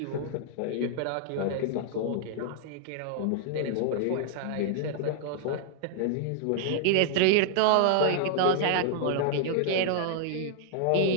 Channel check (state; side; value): different; both; correlation -0.01